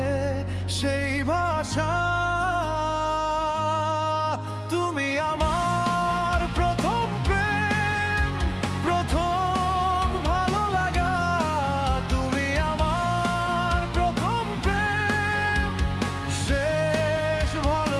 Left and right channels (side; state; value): both; identical; correlation 1.00